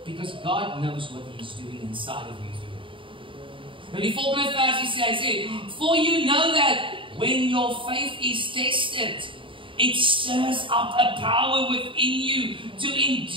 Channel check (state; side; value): late; left; 0.25 ms